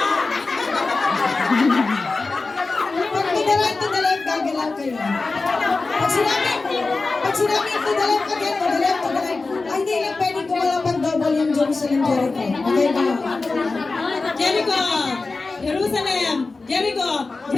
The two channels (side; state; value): right; quieter; 3.7 dB